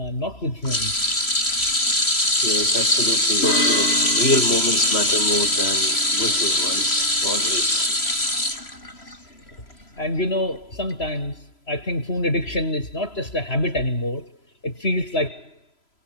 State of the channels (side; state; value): right; late; 3.0 ms